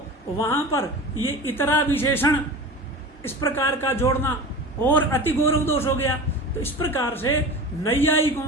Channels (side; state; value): both; normal; correlation 0.32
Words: वहां पर ये इतरा विशेषण इस प्रकार का जोड़ना और अति गौरव दोष हो गया। तो इस प्रकार से